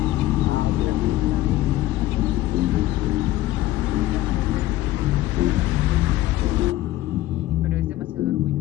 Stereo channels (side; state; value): right; quieter; 15.6 dB